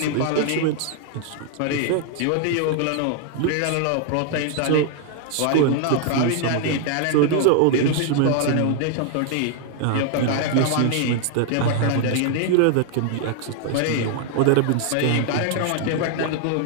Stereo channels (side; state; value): both; different; correlation 0.00